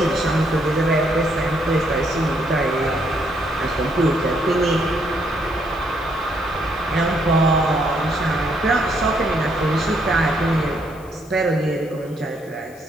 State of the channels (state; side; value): noise; left; hiss, 26 dB below the sound